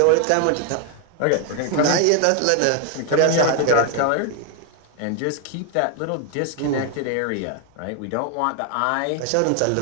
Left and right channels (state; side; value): different; both; correlation 0.00